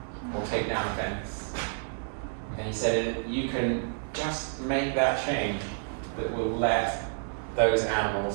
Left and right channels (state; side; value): silent; left; 58 dB below the other